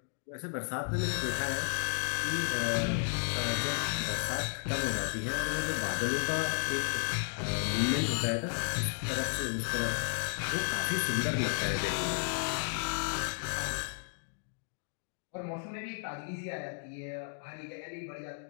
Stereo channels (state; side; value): silent; right; 55 dB below the other